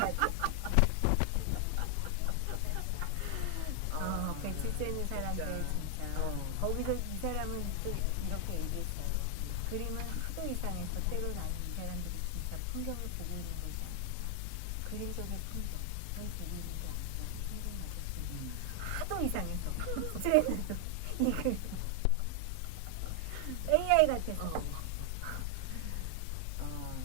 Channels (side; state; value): both; different; correlation 0.00